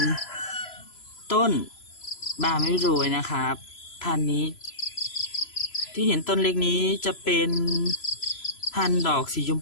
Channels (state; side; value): late; right; 3.0 ms